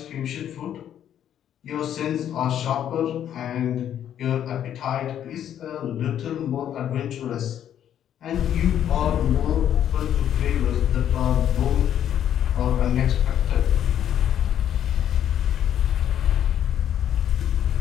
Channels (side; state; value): right; quieter; 10.2 dB